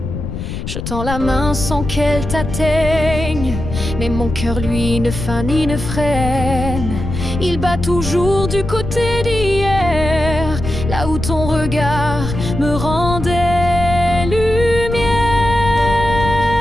Je tends la main sans qu'elle t'atteigne, mais mon cœur lui ne feint ni ne freine. Il bat toujours du côté d'hier, là où ton regard me rendait lumière.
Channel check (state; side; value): noise; left; rumble, 6 dB below the sound